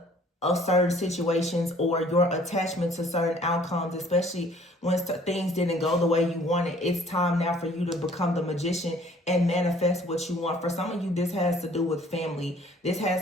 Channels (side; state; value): both; normal; correlation 0.56